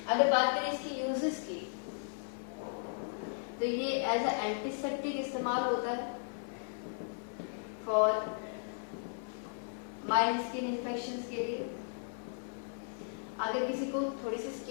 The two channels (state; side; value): silent; right; 54 dB below the other